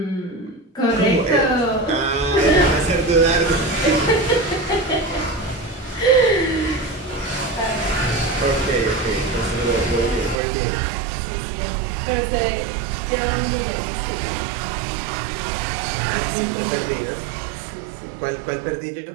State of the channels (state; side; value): drops out; left; at 10.4 s